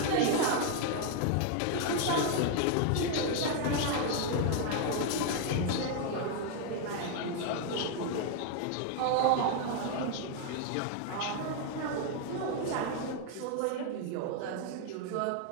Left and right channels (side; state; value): both; different; correlation 0.00